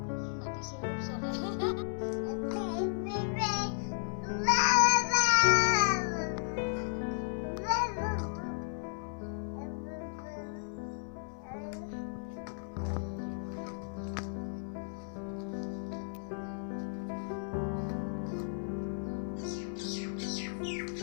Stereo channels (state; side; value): silent; right; 55 dB below the other